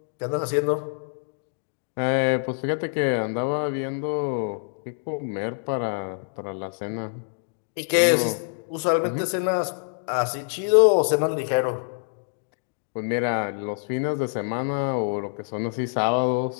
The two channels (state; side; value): silent; right; digital silence